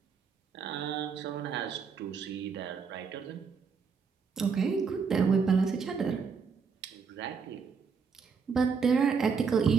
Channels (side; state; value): left; quieter; 5.6 dB